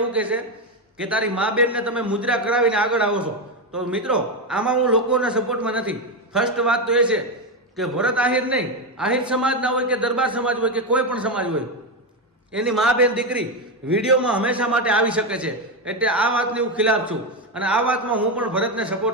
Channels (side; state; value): both; normal; correlation 0.10